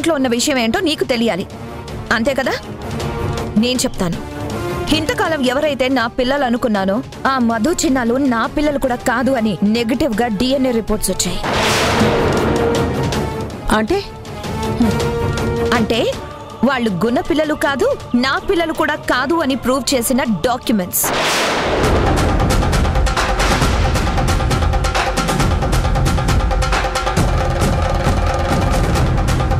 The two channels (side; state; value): both; identical; correlation 1.00